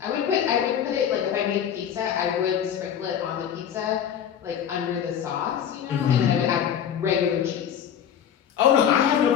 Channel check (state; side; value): quieter; right; 9.0 dB